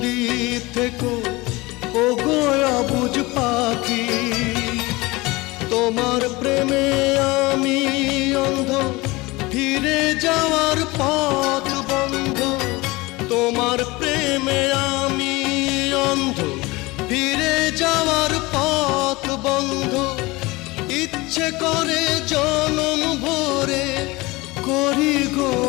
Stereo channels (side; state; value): right; quieter; 22.3 dB